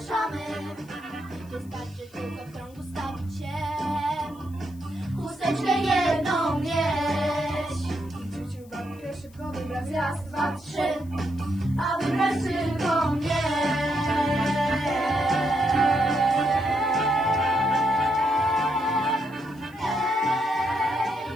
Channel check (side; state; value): left; noise; hiss, 27 dB below the sound